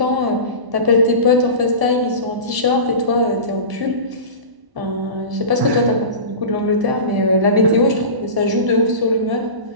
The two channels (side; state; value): left; late; 1.0 ms